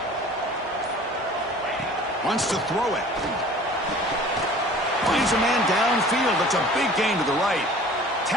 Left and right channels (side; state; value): both; normal; correlation 0.46